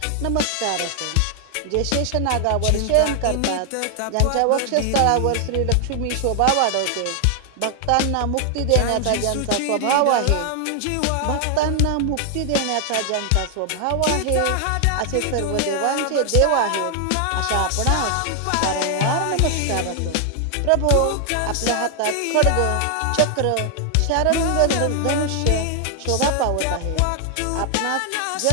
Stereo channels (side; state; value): both; different; correlation 0.00